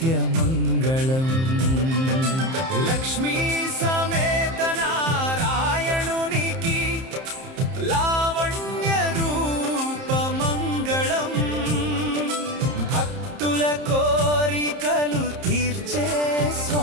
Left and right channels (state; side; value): late; left; 30 ms